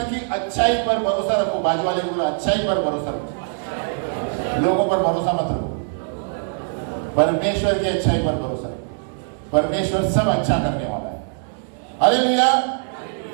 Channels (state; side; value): silent; left; 61 dB below the other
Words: की अच्छाई पर भरोसा रखो। बाजू वाले को अच्छाई पर भरोसा रखो, लोगों पर भरोसा मत रखो। परमेश्वर की अच्छाई पर भरोसा रखो, परमेश्वर सब अच्छा करने वाला है। हालेलुया।